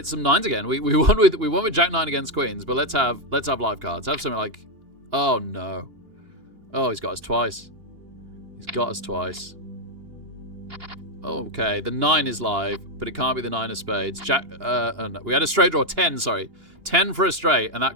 some 9s again. We won with Jack 9 against Queens, but let's have live cards. Have something like, oh no. Oh, he's got us twice. He's got us twice. Okay, the 9 is live, but it can't be the 9 of spades. Jack, oh no. We had a straight draw, 10, sorry. 10 for a straight, and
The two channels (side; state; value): left; late; 2.8 ms